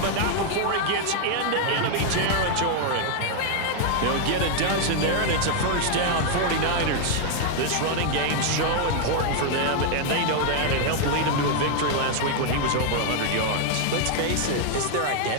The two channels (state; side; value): different; both; correlation 0.00